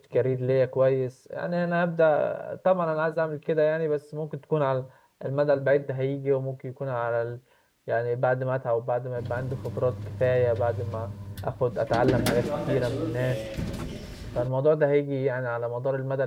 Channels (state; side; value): identical; both; correlation 1.00